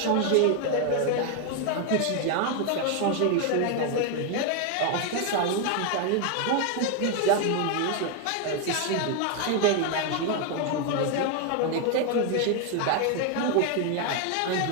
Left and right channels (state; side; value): different; both; correlation 0.01